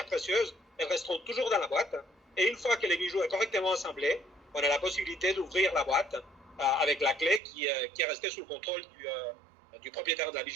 précieuses. Elles resteront toujours dans la boîte. Et une fois que les bijoux est correctement assemblés, on a la possibilité d'ouvrir la boîte avec la clé qui est restée sous le contrôle du propriétaire de la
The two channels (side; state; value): left; drops out; at 7.4 s